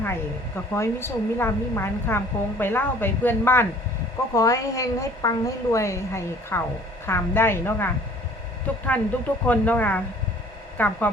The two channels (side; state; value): both; normal; correlation 0.52